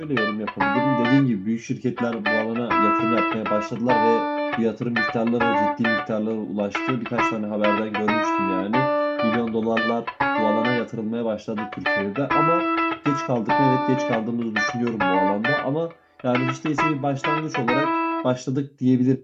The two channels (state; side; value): identical; both; correlation 1.00